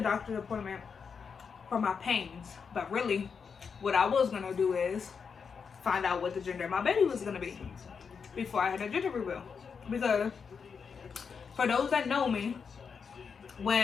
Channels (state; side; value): quieter; right; 6.0 dB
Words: doctor's appointment for my pains. But really, what I was gonna do is find out what the gender of my baby was gonna be before I had a gender reveal. Because for those that know me,